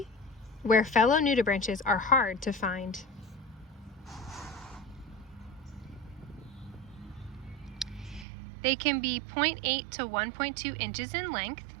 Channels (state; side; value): drops out; left; at 8.2 s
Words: fellow nudibranches are hard to find. They can be 0.8 to 1.2 inches in length.